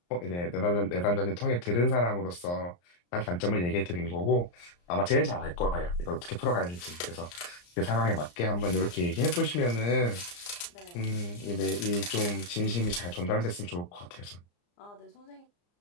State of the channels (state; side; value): late; right; 34 ms